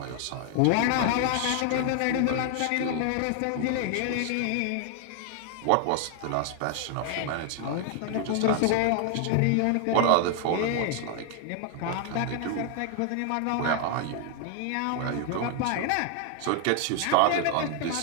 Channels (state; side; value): different; both; correlation 0.00